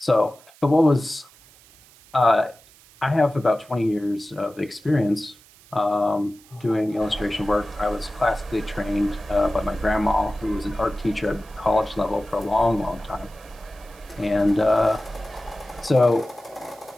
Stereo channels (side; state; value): right; noise; hiss, 26 dB below the sound